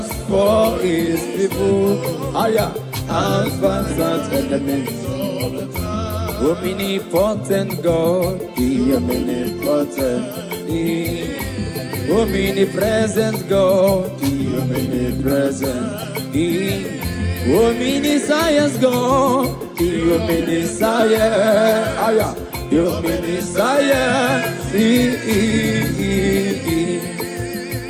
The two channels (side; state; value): both; identical; correlation 1.00